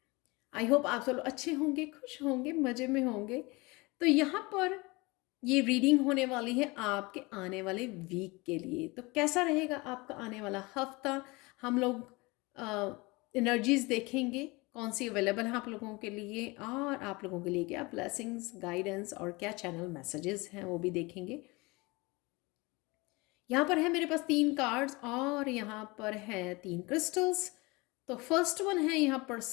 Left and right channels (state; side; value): quieter; right; 24.6 dB